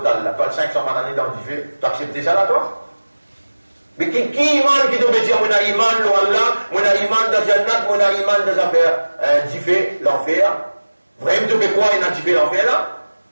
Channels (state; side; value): inverted; both; correlation -1.00